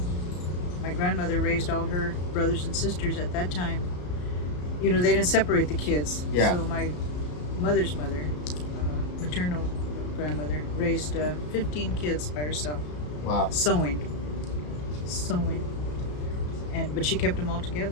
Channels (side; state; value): right; late; 34 ms